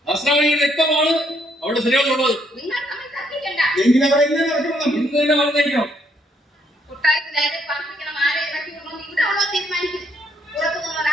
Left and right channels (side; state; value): both; normal; correlation 0.71